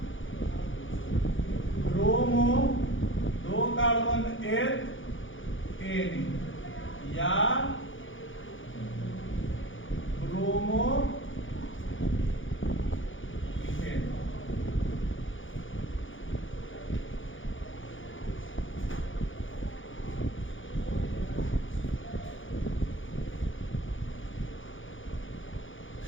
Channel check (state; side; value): late; right; 0.57 ms